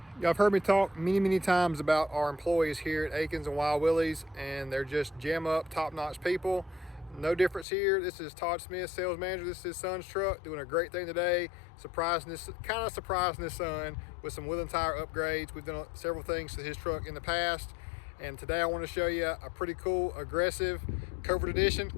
Y'all have heard me talk many times about our employees here at Akins and Wild Willie's, and they're just jam up, top-notch people. No difference here. This is Todd Smith, sales manager. This is his son's truck, doing a great thing today, surprising his son with some wheel and tire upgrades. We've done several things to his truck in the past, and today I want to show you a pretty cool, aggressive Covert edition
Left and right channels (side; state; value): right; drops out; at 7.7 s